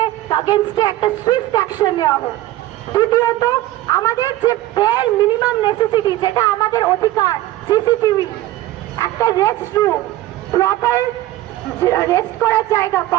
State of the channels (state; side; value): quieter; left; 15.5 dB